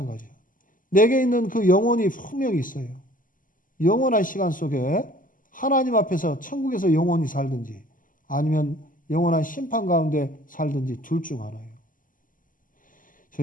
내게 있는 그 영혼이 분명히 있어요. 영원한 시간 속에 하나님 앞에서 천국에서 영원히 살든지 아니면 영원한 심판 가운데 살든지 둘 중 하나예요.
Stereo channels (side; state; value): right; late; 0.39 ms